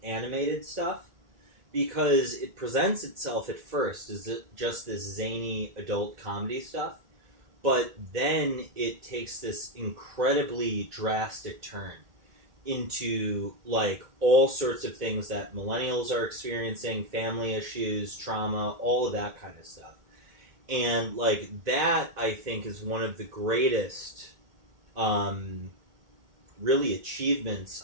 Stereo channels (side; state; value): left; late; 2.0 ms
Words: animated stuff, because it presents itself at first as just this zany adult comedy stuff, but then it takes this incredibly drastic turn into, like, all sorts of things that millennials are experiencing, family issues, trauma, all of that kind of stuff. And, like, that, I think, is one of the greatest, really, achievements